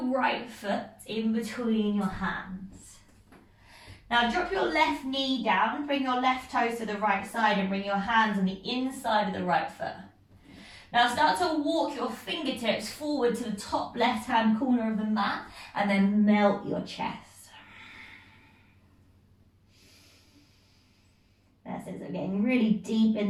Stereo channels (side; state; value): both; identical; correlation 1.00